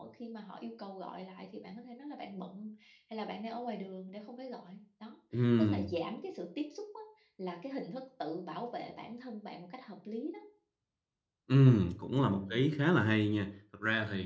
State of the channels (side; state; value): both; identical; correlation 1.00